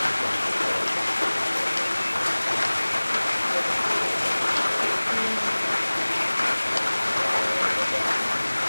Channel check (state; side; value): inverted; both; correlation -1.00